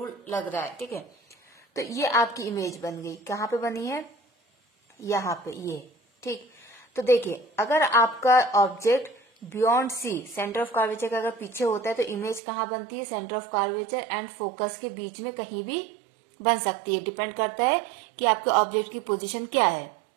लग रहा है, ठीक है। तो ये आपकी इमेज बन गई, कहाँ पे बनी है, यहाँ पे, ये, ठीक। तो देखिए अगर आपका object beyond C, centre of curvature का अगर पीछे होता है तो इमेज कहाँ बनती है, centre of curvature and focus के बीच में कहीं भी बन सकती है, डिपेंड करता है कि आपके ऑब्जेक्ट की पोजीशन क्या है।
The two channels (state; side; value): drops out; left; at 12.4 s